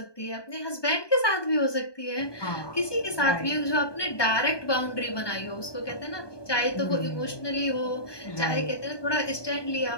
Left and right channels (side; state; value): right; late; 1.2 ms